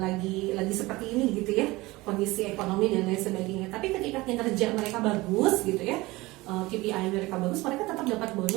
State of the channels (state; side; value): quieter; left; 20.9 dB